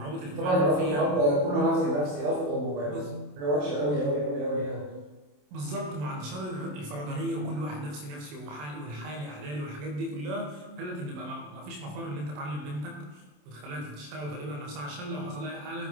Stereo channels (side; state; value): left; late; 27 ms